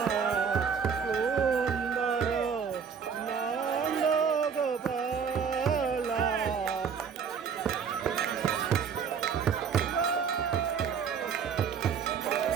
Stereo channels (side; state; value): left; quieter; 6.7 dB